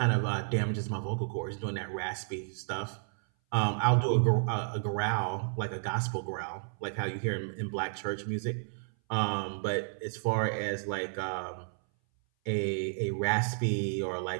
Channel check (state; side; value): silent; left; 57 dB below the other